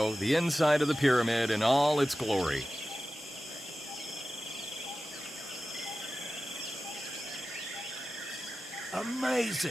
the inside of the pyramid in all its glory.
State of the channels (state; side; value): normal; both; correlation 0.95